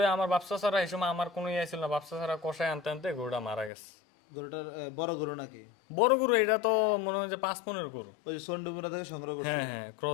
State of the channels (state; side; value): drops out; right; at 3.7 s